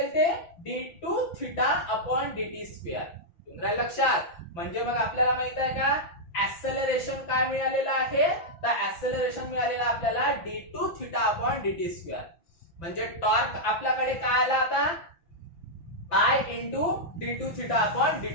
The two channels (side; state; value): right; late; 5.9 ms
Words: ते? d2 theta upon dt square. तुमच्या लक्षात, म्हणजे मग आपल्याला माहित आहे का ऍक्सेलरेशन काय मिळालेलं आहे? तर ऍक्सेलरेशन मिळालेलं आपल्याला d2 theta upon dt square. म्हणजे टॉर्क आपल्याकडे काय आला आता? I into d2 theta upon